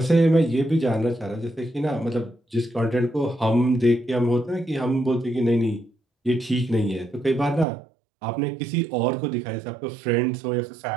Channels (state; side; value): drops out; left; at 7.7 s